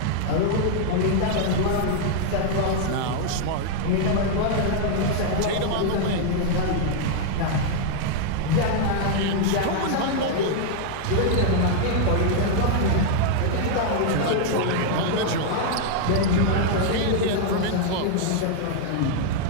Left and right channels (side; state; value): both; different; correlation 0.00